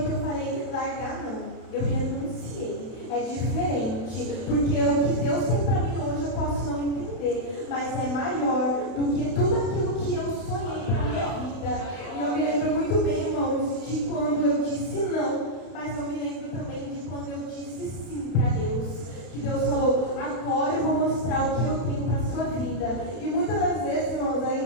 que eu falei: largar não, eu renunciei. É diferente, porque o que Deus tem para mim hoje eu posso não entender, mas é maior do que tudo aquilo que eu sonhei para minha vida. E eu me lembro muito bem, irmãos, de quando eu disse não, mas eu me lembro também de quando eu disse sim para Deus. Que Deus falou: agora eu vou mostrar o que eu tenho para a sua vida. E muitas das vezes, irmãos,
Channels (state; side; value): late; right; 31 ms